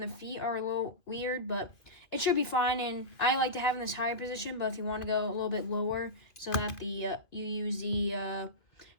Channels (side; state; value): right; late; 2.3 ms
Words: the feet are a little weird, but it should be fine. And I like to have in this higher position, but if you want to go a little bit lower so that the you use the